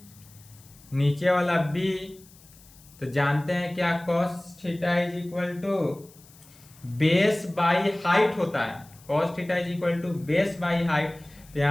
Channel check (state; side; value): noise; left; hiss, 25 dB below the sound